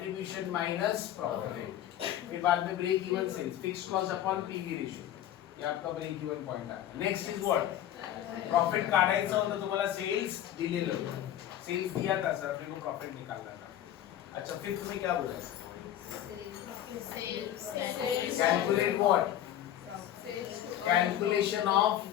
minus profit. फिर बाद में break even sales, fixed cost upon PV ratio. ये आपका ब्रेक इवन पॉइंट है। Next is what? प्रॉफिट काढायचं होतं तुम्हाला, सेल्स दिलेलं होतं, सेल्स दिया था सर, अपने को प्रॉफिट निकालना था। अच्छा फिर तुम्हें क्या बोला? Calculate what? Calculation of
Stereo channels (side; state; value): right; quieter; 11.7 dB